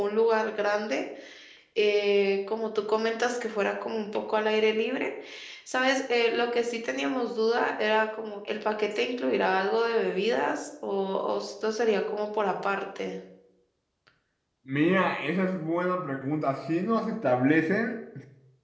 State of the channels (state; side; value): identical; both; correlation 1.00